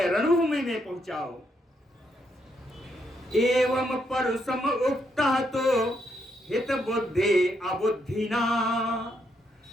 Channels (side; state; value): both; normal; correlation 0.77